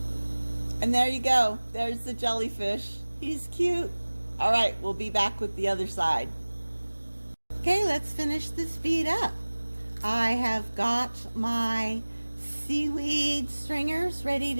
And there you go. There's the jellyfish. He's cute. All right, we'll be back with the other side. Okay, let's finish this bead up. I have got my seaweed stringers ready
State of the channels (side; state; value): both; inverted; correlation -1.00